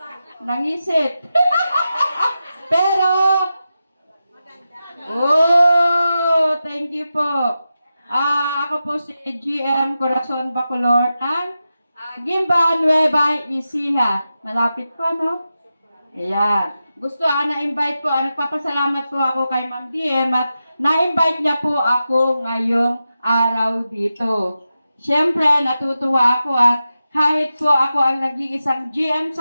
nangisit. Pero, thank you po. Ako po si GM Corazon Bacolor ng Gimba Nueva Ecija. Malapit po, no? Ayan. Gusto, na-invite po, nagpapasalamat po ako kay Ma'am DM at na-invite niya po ako ngayong araw dito. Siyempre, natutuwa ako at kahit po ako ang nag-iisang GM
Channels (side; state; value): both; inverted; correlation -0.91